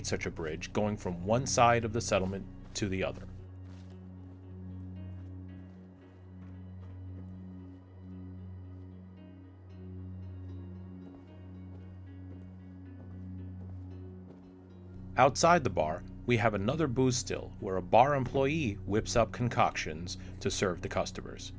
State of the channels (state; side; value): identical; both; correlation 1.00